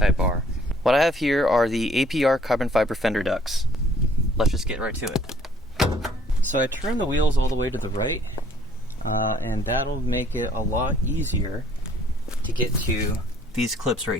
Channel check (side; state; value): both; normal; correlation 0.60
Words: R. What I have here are the APR carbon fiber fender ducts. Let's just get right to it. So I turn the wheels all the way to the right, and that'll make it a lot easier to get to these clips right